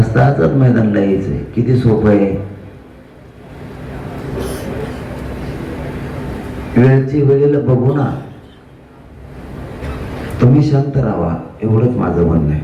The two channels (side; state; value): both; identical; correlation 1.00